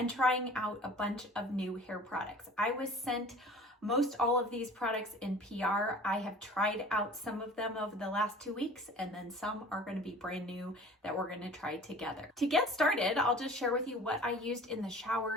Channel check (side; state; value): both; normal; correlation 0.44